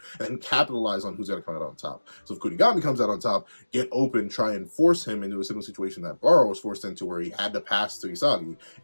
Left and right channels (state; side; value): inverted; both; correlation -1.00